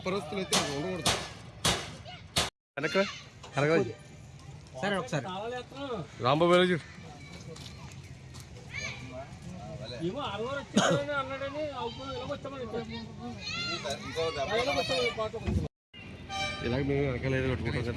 అయితే ఉండకూడదు సరే ఒకసారి రాంబాబు ఇలాగ మేము వెనకాల ఏదో కట్టుకుంటాం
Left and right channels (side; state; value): both; identical; correlation 1.00